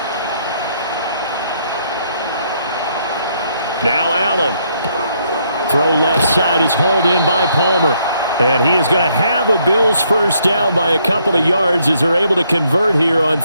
Now Allen. Throw left side is hauled in by Palmer. And he is going to have a Bills first down by a couple of yards as they're able to convert here on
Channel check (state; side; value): inverted; both; correlation -0.71